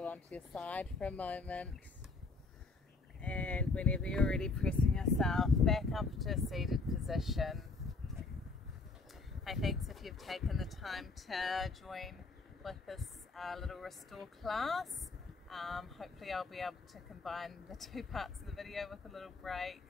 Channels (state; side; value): quieter; right; 3.7 dB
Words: onto your side for a moment, and whenever you're ready, pressing yourself back up to a seated position. Hey, thanks if you've taken the time to join with this little restore class. Hopefully I'll be able to combine the 2 parts of the video with a little break.